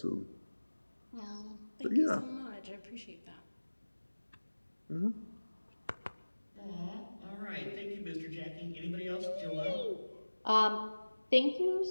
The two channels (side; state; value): both; inverted; correlation -1.00